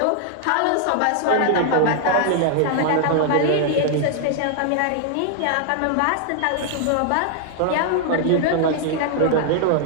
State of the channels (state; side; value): different; both; correlation 0.00